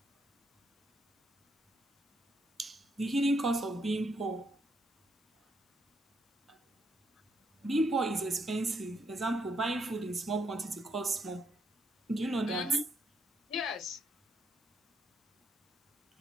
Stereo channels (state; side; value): normal; both; correlation 0.76